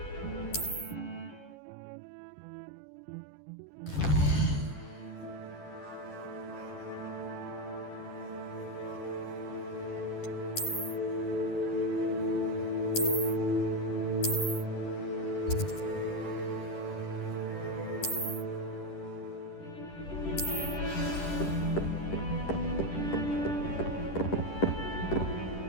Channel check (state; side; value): late; right; 10 ms